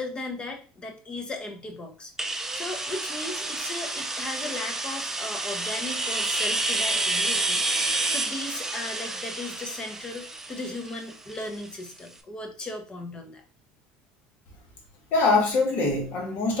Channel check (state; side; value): normal; both; correlation 0.50